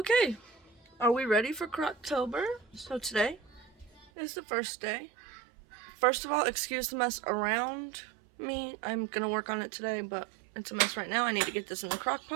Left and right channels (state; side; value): drops out; left; at 4.1 s